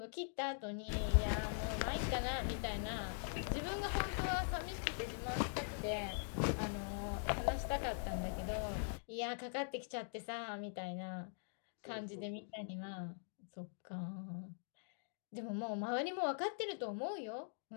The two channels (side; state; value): right; silent; digital silence